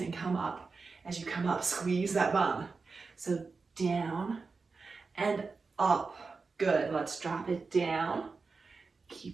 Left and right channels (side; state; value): left; quieter; 4.4 dB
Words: come up. As you come up, squeeze that bum. So down and up. Good. Let's drop it down.